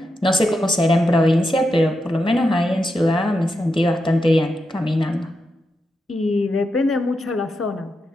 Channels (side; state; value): both; normal; correlation 0.86